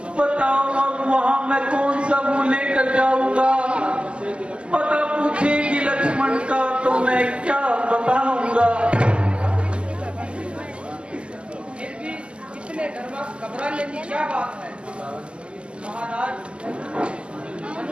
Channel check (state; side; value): late; left; 0.052 ms